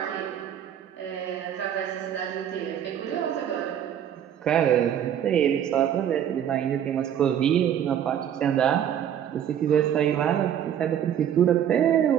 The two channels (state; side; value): quieter; left; 9.7 dB